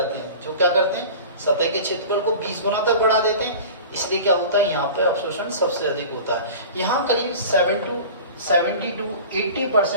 हैं, जो क्या करते हैं, सतह के क्षेत्रफल को 20 गुना तक बढ़ा देते हैं। इसलिए क्या होता है, यहाँ पे अवशोषण सबसे अधिक होता है। यहाँ करीब 70 to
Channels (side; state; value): both; inverted; correlation -0.38